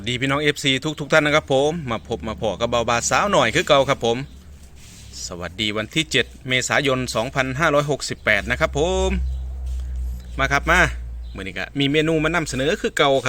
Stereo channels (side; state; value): both; identical; correlation 1.00